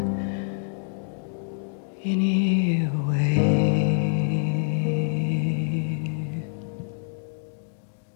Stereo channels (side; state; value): right; silent; digital silence